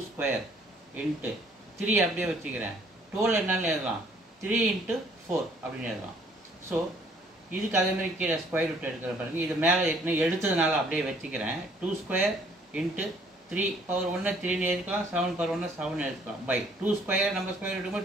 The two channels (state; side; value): normal; both; correlation 0.61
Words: ஸ்கொயர் இன்ட்டு 3 அப்படியே வச்சுக்கிறேன். 12 என்னன்னு எழுதலாம், 3 × 4 அப்படின்னு எழுதலாம். ஸோ இதுக்கு அதேமாதிரி கீழே ஸ்கொயர் ரூட் எடுக்கிற பாருங்க. இது மேலே ஏற்கனவே எடுத்ததுனால அப்படியே வச்சுக்கிறேன். 2 ஸ்கொயர் இன்ட்டு 3/1 3 எடுக்கலாம், 7/1 7 எடுக்கலாம். பை 2 ஸ்கொயர் நம்ம ஸ்கொயர்